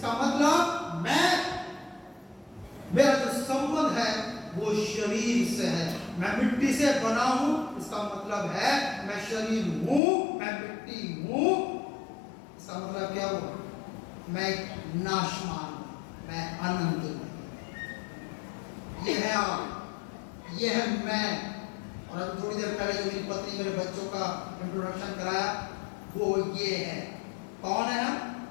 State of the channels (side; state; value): right; drops out; at 10.0 s